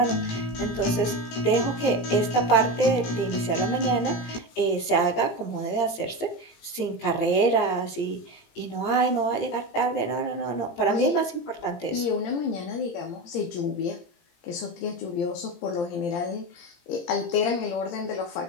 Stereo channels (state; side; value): late; right; 17 ms